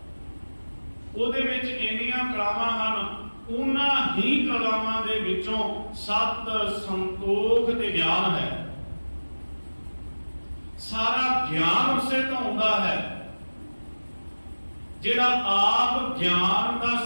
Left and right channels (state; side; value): inverted; both; correlation -1.00